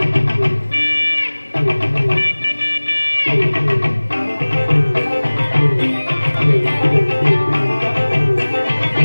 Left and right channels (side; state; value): both; inverted; correlation -1.00